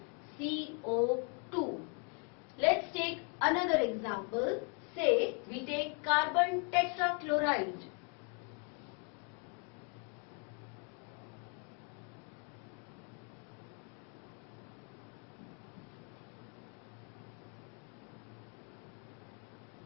CO2. Let's take another example. Say we take carbon tetrachloride.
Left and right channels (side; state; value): right; quieter; 38.0 dB